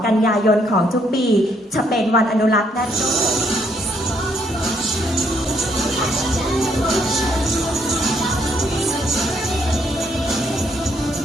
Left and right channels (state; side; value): normal; both; correlation 0.71